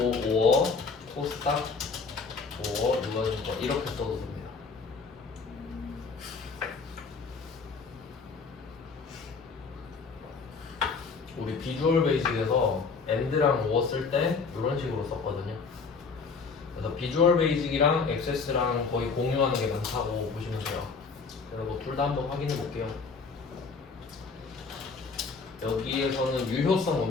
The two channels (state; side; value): quieter; right; 4.8 dB